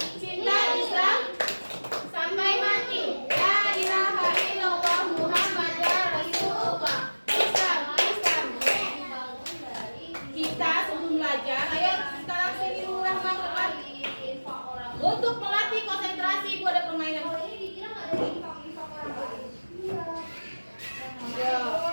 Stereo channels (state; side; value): inverted; both; correlation -1.00